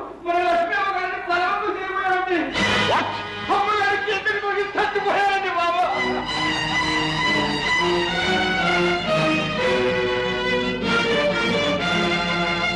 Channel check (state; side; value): identical; both; correlation 1.00